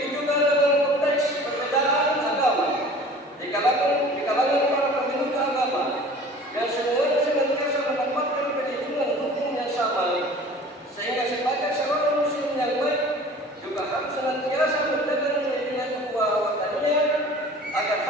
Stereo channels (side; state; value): both; normal; correlation 0.45